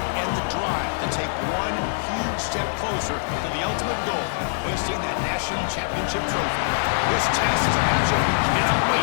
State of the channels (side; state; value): right; silent; digital silence